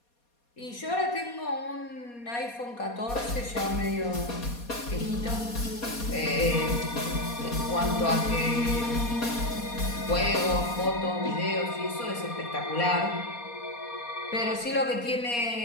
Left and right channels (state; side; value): late; right; 4.2 ms